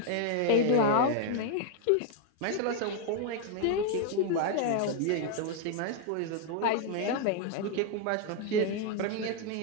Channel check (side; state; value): both; different; correlation 0.00